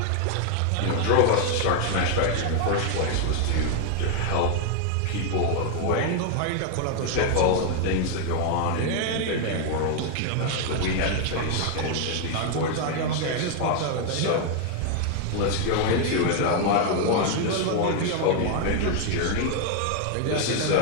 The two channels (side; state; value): both; different; correlation 0.00